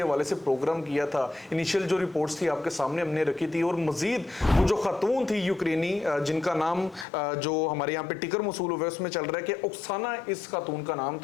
हवाले से प्रोग्राम किया था। इनिशियल जो रिपोर्ट्स थी आपके सामने हमने रखी थी, और मजीद वो जो खातून थी यूक्रेनी जिनका नाम जो हमारे यहाँ पे टिकर मसूल हुआ उसमें चल रहा है कि ओक्साना इस खातून का नाम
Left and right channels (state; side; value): drops out; right; at 7.1 s